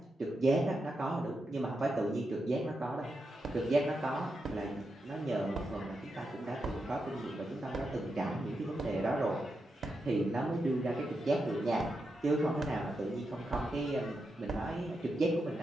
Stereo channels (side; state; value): both; normal; correlation 0.86